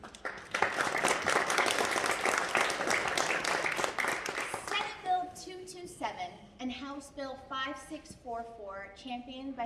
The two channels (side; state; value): both; identical; correlation 1.00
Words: Senate Bill 227 and House Bill 5644, championed